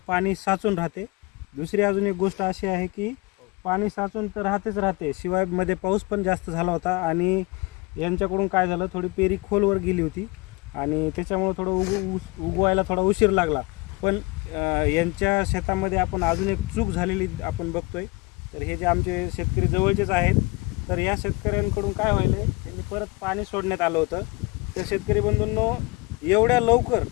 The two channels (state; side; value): quieter; right; 25.5 dB